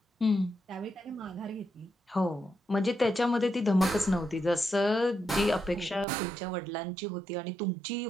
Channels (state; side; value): drops out; left; at 6.1 s